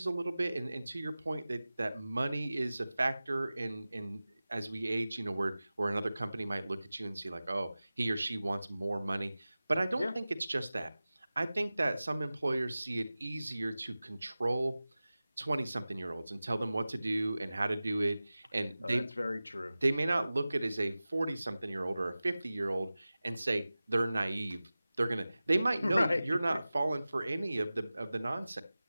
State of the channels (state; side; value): inverted; both; correlation -0.97